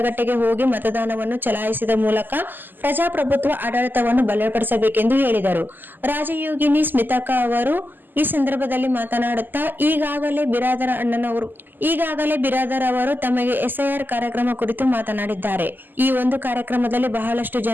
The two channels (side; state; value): left; late; 0.090 ms